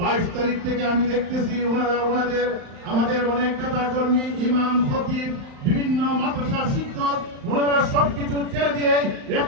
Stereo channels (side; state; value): left; late; 35 ms